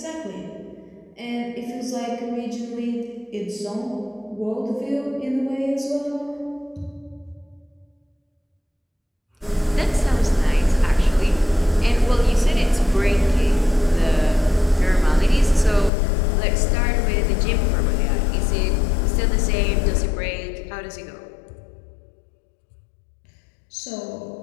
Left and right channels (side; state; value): right; drops out; at 15.9 s